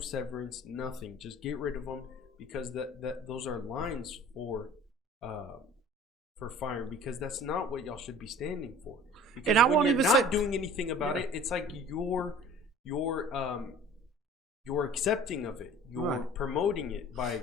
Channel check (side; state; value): both; normal; correlation 0.46